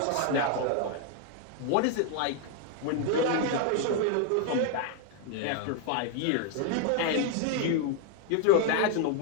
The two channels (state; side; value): different; both; correlation 0.00